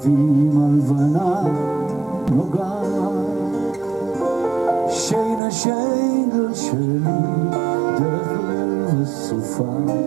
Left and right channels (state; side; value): drops out; left; at 5.4 s